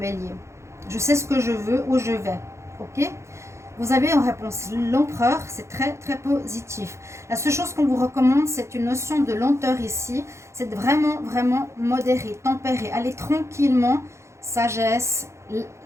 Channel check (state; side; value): late; left; 0.14 ms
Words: Je sais ce que je veux, où je vais. Ok? Vous avez en réponse l'empereur, c'est très très positif. La seule chose qu'on vous recommande, c'est une notion de lenteur ici. C'est vraiment vraiment modéré, tempéré. Allez tranquillement, sagesse.